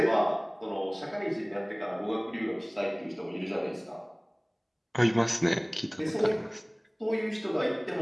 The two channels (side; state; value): both; identical; correlation 1.00